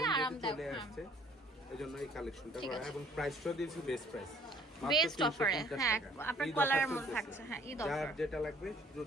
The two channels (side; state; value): both; normal; correlation 0.57